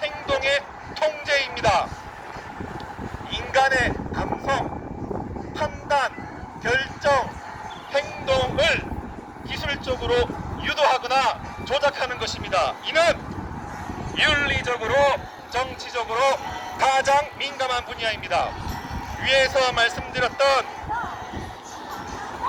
행동의 통제입니다. 인간의 감성, 판단, 결정, 행동을 기술적으로 유도하거나 조작하는 것입니다. 이는 윤리적으로, 정치적으로 가장 민감한 분야입니다. 위에서 말씀드렸던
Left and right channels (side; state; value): both; identical; correlation 1.00